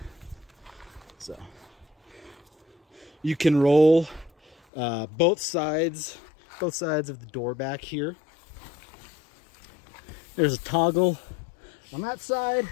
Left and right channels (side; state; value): right; drops out; at 4.5 s